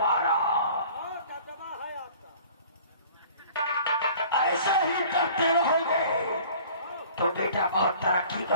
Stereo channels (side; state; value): both; inverted; correlation -0.48